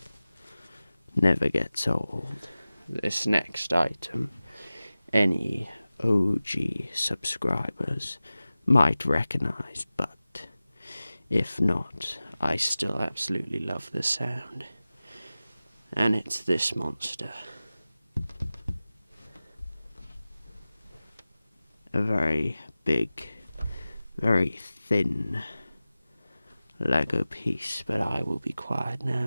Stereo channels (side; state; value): both; inverted; correlation -0.96